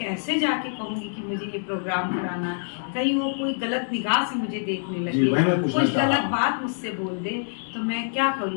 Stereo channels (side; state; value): right; silent; digital silence